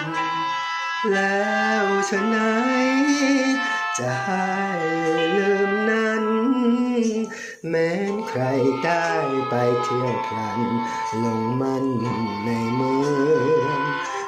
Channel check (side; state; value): both; identical; correlation 1.00